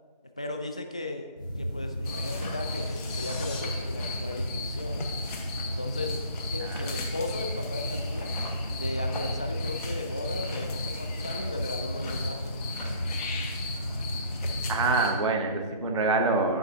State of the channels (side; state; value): both; inverted; correlation -0.49